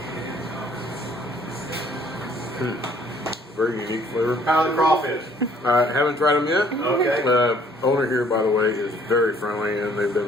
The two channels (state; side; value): normal; both; correlation 0.60